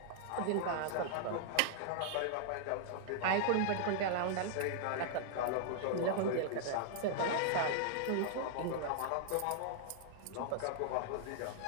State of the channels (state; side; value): different; both; correlation -0.01